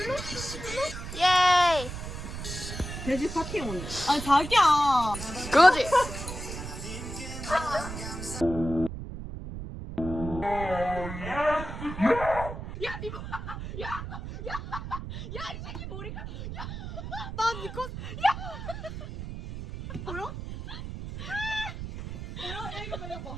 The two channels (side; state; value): right; noise; rumble, 8 dB below the sound